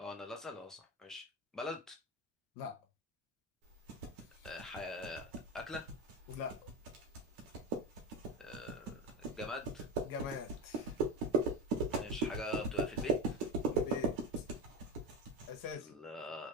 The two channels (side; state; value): both; normal; correlation 0.19